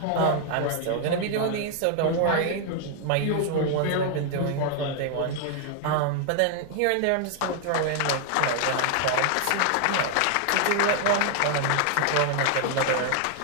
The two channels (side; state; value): both; different; correlation 0.00